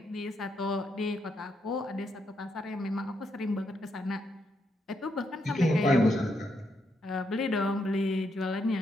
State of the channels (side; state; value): both; normal; correlation 0.79